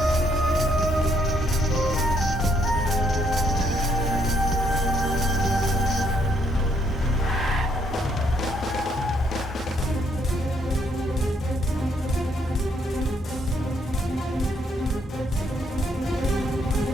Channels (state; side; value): normal; both; correlation 0.71